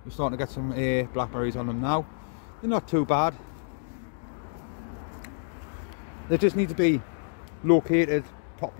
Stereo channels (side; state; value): right; silent; digital silence